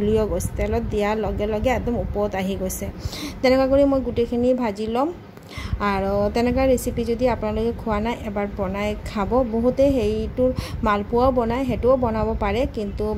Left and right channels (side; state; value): both; identical; correlation 1.00